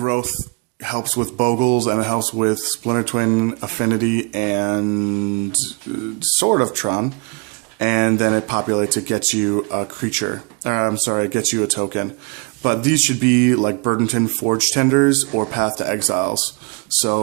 helps with Bogles, and it helps with Splinter Twin, Affinity, and sort of Tron. And then it populates, it gets you a creature. It gets you a token. But these should be like Burdenton Forge Tenders or Path to Exiles.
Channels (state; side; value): quieter; left; 33.2 dB